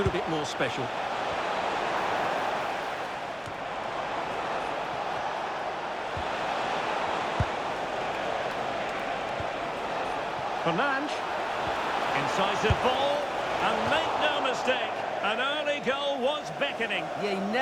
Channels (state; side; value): identical; both; correlation 1.00